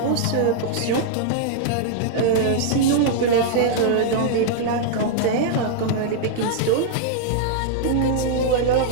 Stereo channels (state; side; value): different; both; correlation -0.01